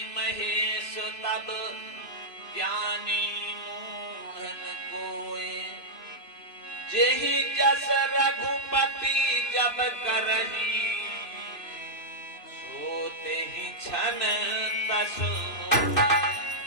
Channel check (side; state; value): right; late; 3.0 ms